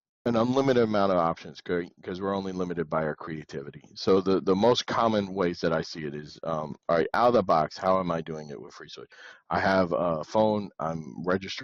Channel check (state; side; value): identical; both; correlation 1.00